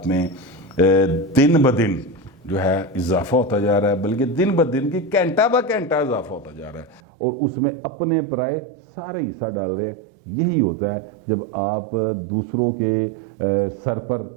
में दिन ब दिन जो है इजाफा होता जा रहा है, बल्कि दिन ब दिन की घंटा ब घंटा इजाफा होता जा रहा है, और उसमें अपने पराए सारे हिस्सा डाल रहे हैं। यही होता है जब आप दूसरों के सर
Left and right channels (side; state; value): left; drops out; at 7.0 s